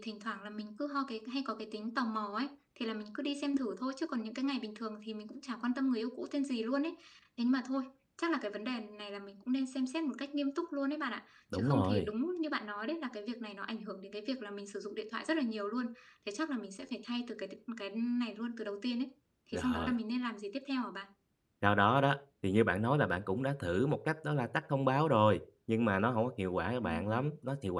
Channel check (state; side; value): identical; both; correlation 1.00